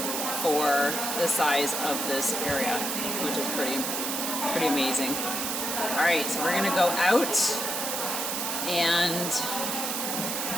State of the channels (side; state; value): right; noise; hiss, 1 dB below the sound